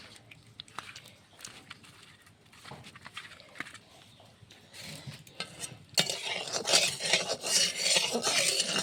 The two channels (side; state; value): both; identical; correlation 1.00